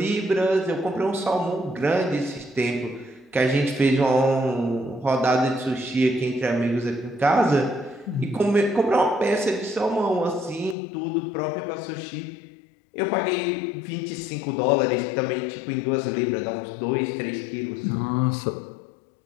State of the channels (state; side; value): drops out; right; at 10.8 s